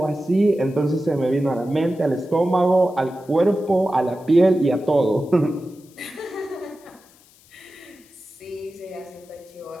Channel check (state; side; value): noise; left; hiss, 28 dB below the sound